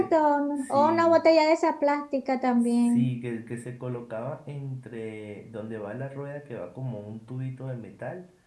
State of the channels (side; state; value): both; identical; correlation 1.00